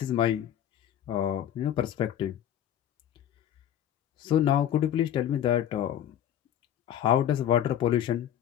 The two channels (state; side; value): quieter; right; 10.7 dB